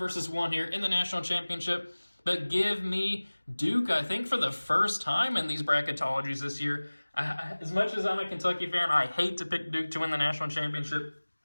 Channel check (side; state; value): both; inverted; correlation -1.00